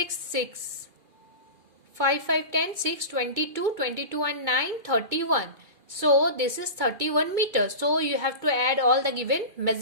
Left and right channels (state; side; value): late; left; 2.2 ms